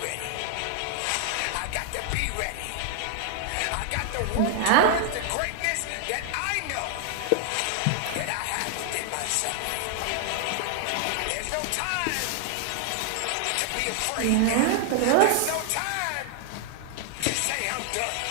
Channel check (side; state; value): both; different; correlation 0.00